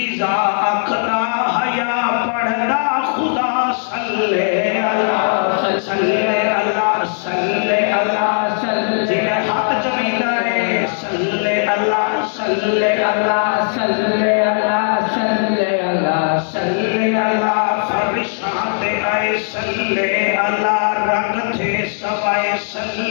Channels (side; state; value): right; silent; 58 dB below the other